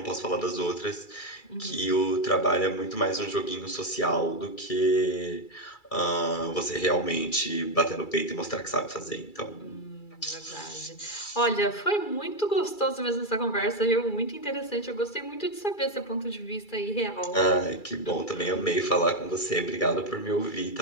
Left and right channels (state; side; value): late; right; 2.3 ms